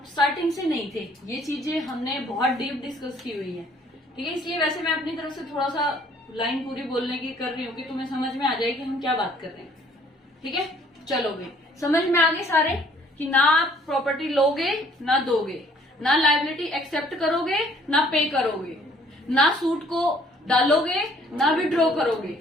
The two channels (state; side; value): normal; both; correlation 0.59